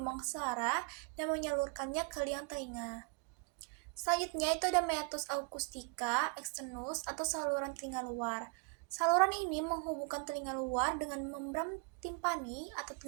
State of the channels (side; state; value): left; quieter; 35.0 dB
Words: suara dan menyalurkannya ke liang telinga. Selanjutnya itu ada meatus acoustica externus atau saluran telinga luar. Saluran ini menghubungkan telinga luar dengan membran timpani atau